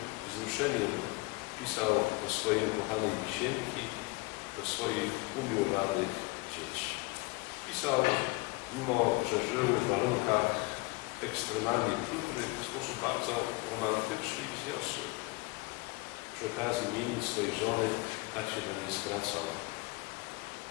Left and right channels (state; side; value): quieter; right; 25.8 dB